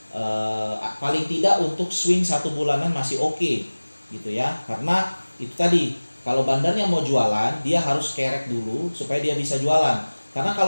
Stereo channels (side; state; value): both; inverted; correlation -1.00